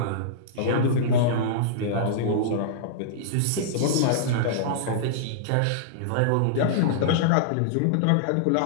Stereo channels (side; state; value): both; different; correlation -0.02